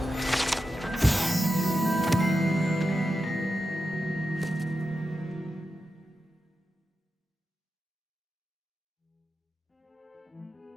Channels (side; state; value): both; normal; correlation 0.90